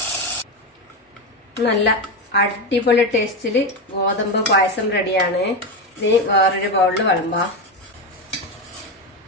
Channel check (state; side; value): normal; both; correlation 0.14